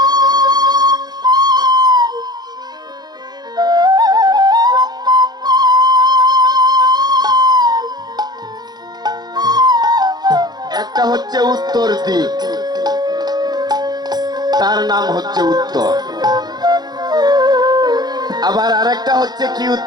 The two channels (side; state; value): left; late; 0.20 ms